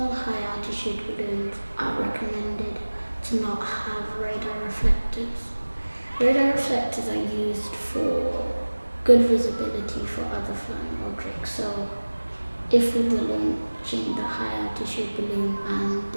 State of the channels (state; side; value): inverted; both; correlation -1.00